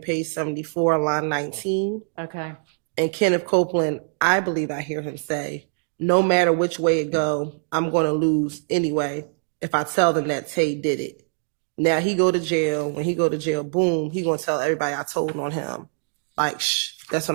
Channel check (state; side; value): silent; left; digital silence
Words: page 74, line 19. Okay. And Kenneth Copeland, I believe I hear him say, no matter which way it go, I'm going to lose anyway if I tell them that Tay did it. Now he go to jail. When he go to jail, boom, he going to tell everybody I told on him. Like, shh, that's